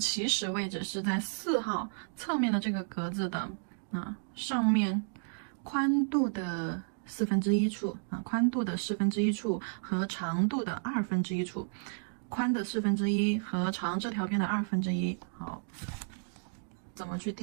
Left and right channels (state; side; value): silent; left; digital silence